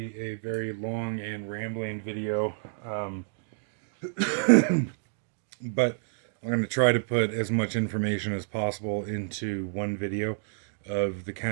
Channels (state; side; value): silent; left; digital silence